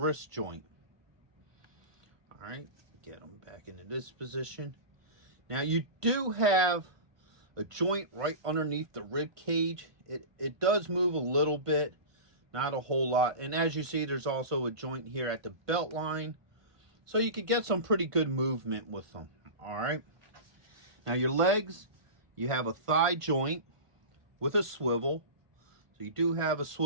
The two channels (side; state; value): left; late; 1.5 ms